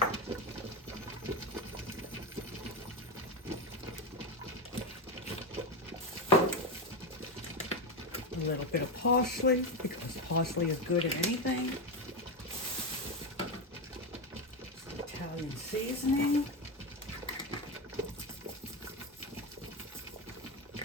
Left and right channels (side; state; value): both; normal; correlation 0.13